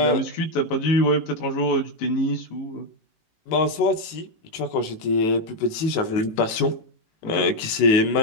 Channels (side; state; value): right; late; 18 ms